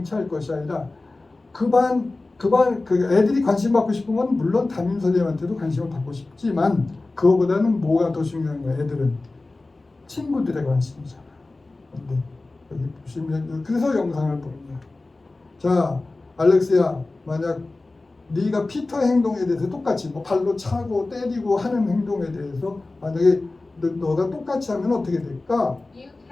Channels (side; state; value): right; quieter; 3.2 dB